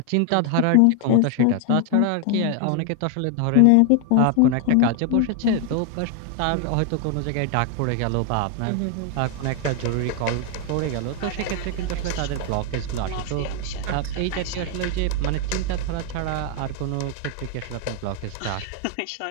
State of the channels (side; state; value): both; different; correlation 0.00